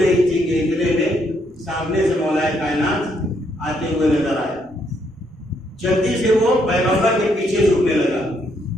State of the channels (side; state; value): both; normal; correlation 0.73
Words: تھی کہ اتنے میں سامنے سے مولائے کائنات آتے ہوئے نظر آئے. جلدی سے وہ پیغمبر کے پیچھے چھپنے لگا،